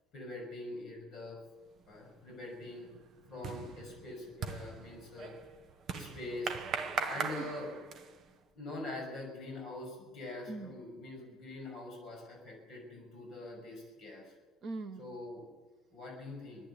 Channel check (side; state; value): both; normal; correlation 0.57